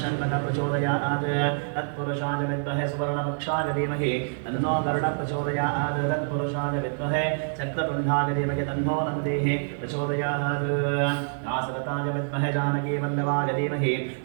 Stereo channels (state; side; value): silent; left; digital silence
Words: शण्डकः प्रचोदयात् तत्पुरुषाय विद्महे सुवर्णवक्षाय धीमहि तन्नो गरुडः प्रचोदयात् तत्पुरुषाय विद्महे चक्रतुण्डाय धीमहि तन्नो नन्दिः प्रचोदयात् दाशरथाय विद्महे जानकीवल्लभाय धीमहि